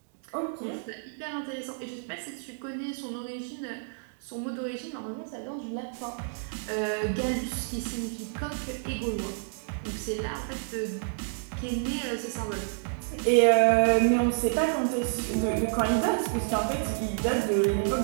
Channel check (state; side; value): silent; left; digital silence